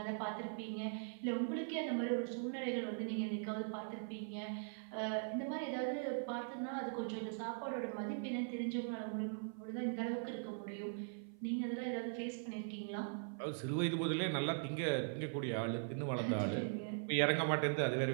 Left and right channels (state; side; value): silent; left; 50 dB below the other